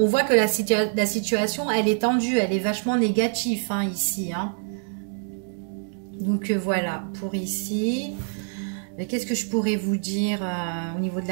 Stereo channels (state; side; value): silent; left; 62 dB below the other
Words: voit que la situation elle est tendue, elle est vachement négative hein, ici. Hein. Donc voilà pour ici. Qu'est-ce que je pourrais vous dire au niveau de